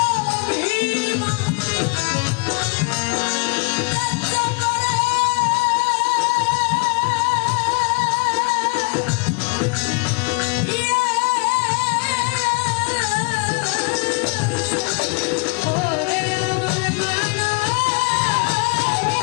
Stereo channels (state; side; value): quieter; right; 31.0 dB